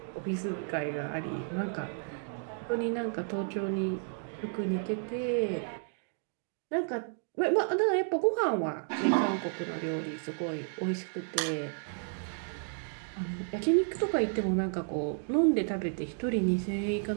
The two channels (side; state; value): left; silent; 56 dB below the other